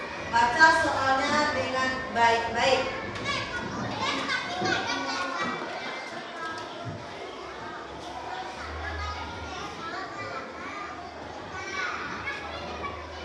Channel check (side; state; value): both; identical; correlation 1.00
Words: Baca soalnya dengan baik-baik.